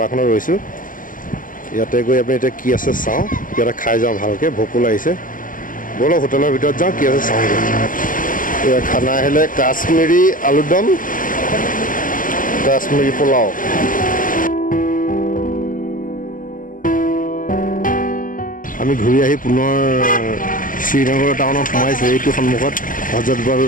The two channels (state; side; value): late; right; 0.39 ms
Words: ৰৈছোঁ ইয়াতে গৈ আমি এতিয়া কি আছে চাওঁ কিবা এটা খাই যাওঁ ভালকৈ ভোকো লাগিছে ব'লক হোটেলৰ ভিতৰত যাওঁ কি আছে চাওঁগৈ এয়া খানা আহিলে কাশ্মীৰী আলুদম কাশ্মীৰী পোলাও আমি ঘূৰি আহি পুনৰ শ্ৰীনগৰ টাউনত সোমাইছোঁ এইটো সন্মুখত হজৰতবল